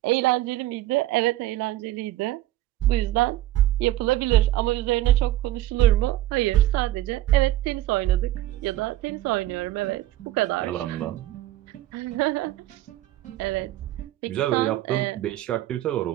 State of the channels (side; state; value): left; quieter; 14.8 dB